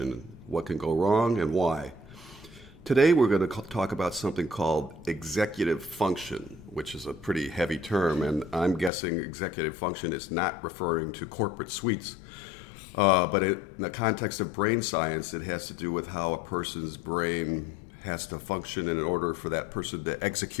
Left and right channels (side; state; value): right; drops out; at 8.9 s